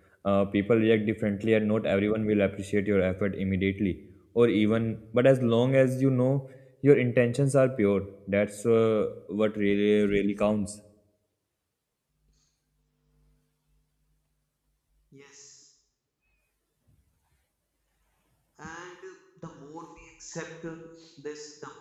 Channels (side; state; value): both; identical; correlation 1.00